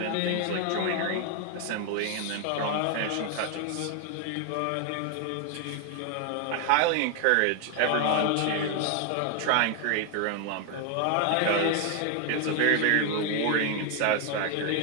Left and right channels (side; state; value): both; different; correlation 0.00